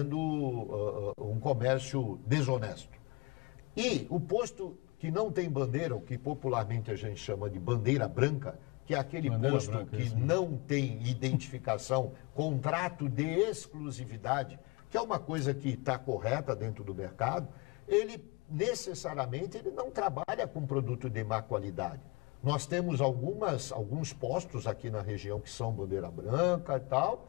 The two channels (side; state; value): right; quieter; 26.6 dB